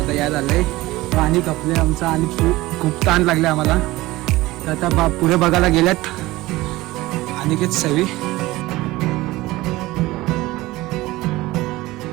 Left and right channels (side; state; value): left; quieter; 18.9 dB